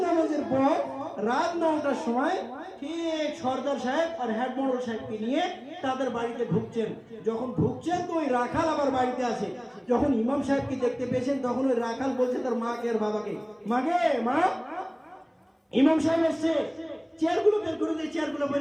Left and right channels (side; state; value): both; identical; correlation 1.00